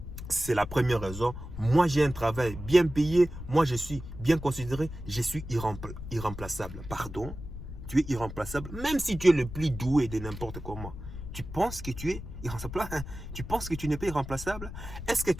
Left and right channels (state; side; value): noise; left; rumble, 10 dB below the sound